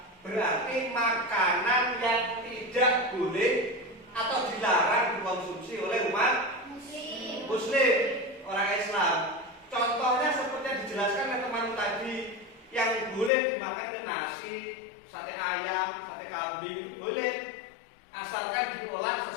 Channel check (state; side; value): drops out; right; at 13.3 s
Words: berarti makanan yang tidak boleh atau dilarang dikonsumsi oleh umat Muslim, orang Islam. Contohnya seperti yang dijelaskan oleh teman tadi, yang boleh dimakan ke nasi, sate ayam, sate kambing itu boleh, asalkan diolah